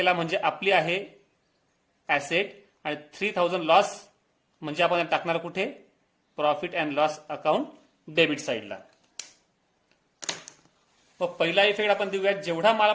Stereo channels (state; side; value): identical; both; correlation 1.00